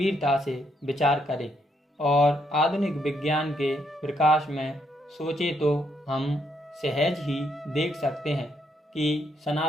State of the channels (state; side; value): normal; both; correlation 0.75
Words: से विचार करें और आधुनिक विज्ञान के प्रकाश में सोचें तो हम सहज ही देख सकते हैं कि